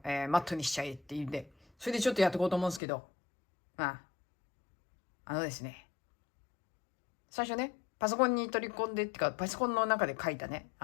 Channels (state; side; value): drops out; right; at 2.8 s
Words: マットにしちゃえっていうんで、それでちょっとやっていこうと思うんですけど、まあ、あのですね、最初ね、パソコンに取り込んでってか、パソコンの中で書いたね、